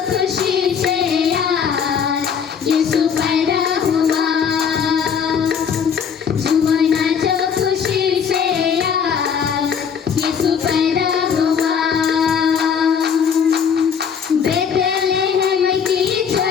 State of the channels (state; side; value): quieter; right; 7.1 dB